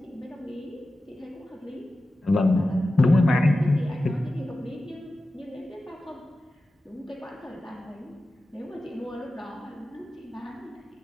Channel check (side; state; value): both; normal; correlation 0.94